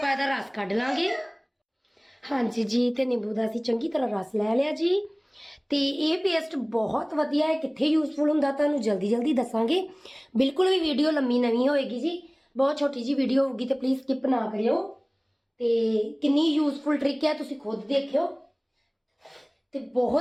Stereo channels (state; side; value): identical; both; correlation 1.00